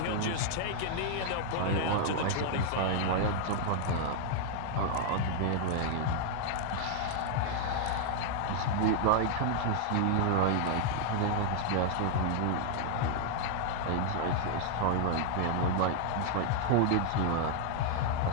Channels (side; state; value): both; different; correlation 0.00